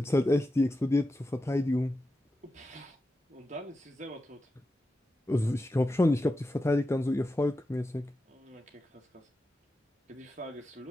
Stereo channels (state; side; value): normal; both; correlation 0.90